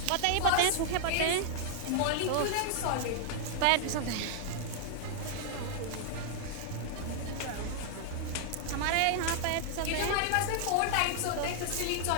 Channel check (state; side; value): different; both; correlation -0.01